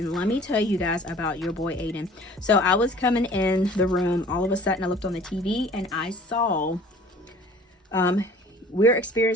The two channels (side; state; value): both; normal; correlation 0.49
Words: let me tell you guys about your boy Aiden. So I was coming in the room. All of a sudden, I looked on the TV and I saw, we're